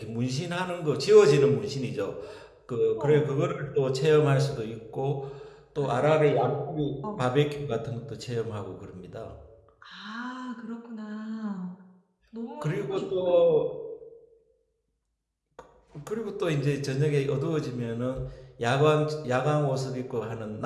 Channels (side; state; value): both; identical; correlation 1.00